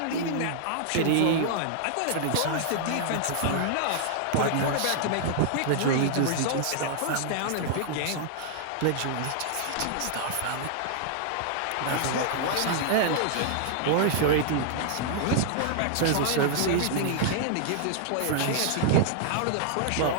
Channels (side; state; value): both; different; correlation -0.01